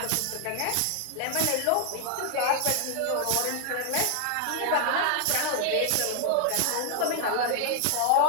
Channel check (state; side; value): different; both; correlation 0.00